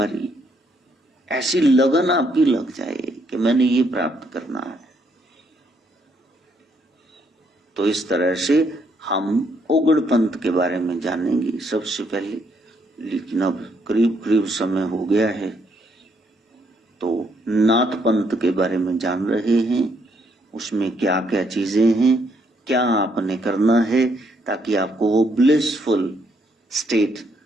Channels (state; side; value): normal; both; correlation 0.72